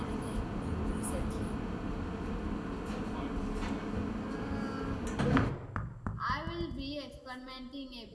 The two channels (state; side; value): identical; both; correlation 1.00